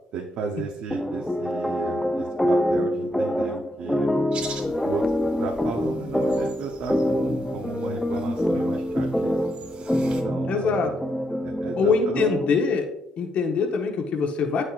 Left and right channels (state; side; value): normal; both; correlation 0.78